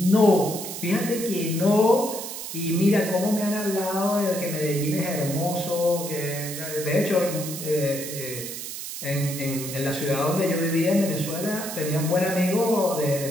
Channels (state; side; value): noise; right; hiss, 8 dB below the sound